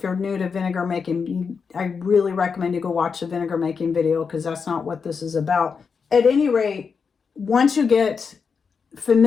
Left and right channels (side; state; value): right; quieter; 5.7 dB